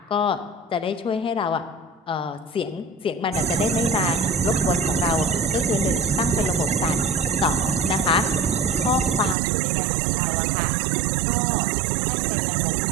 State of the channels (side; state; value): left; drops out; at 9.3 s